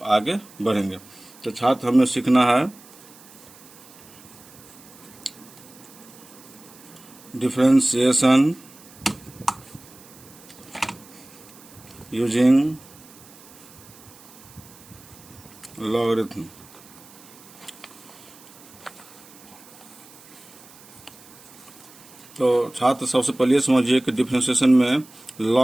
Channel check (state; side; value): noise; right; hiss, 22 dB below the sound